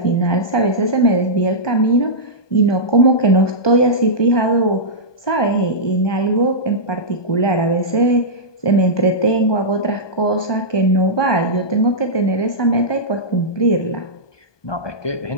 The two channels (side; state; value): right; late; 1.2 ms